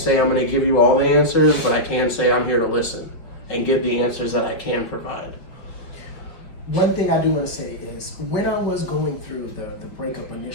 I'm going to give you all the answers, but I can say I'm here to listen and give the answers that I can provide. One thing I do want to say is, when I was going through the breakup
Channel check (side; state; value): right; late; 5.4 ms